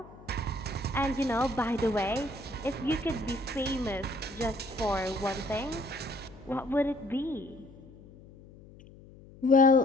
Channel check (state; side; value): noise; left; hum, 21 dB below the sound